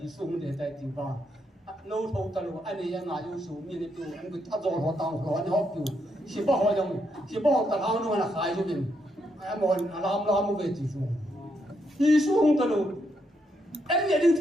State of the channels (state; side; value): normal; both; correlation 0.78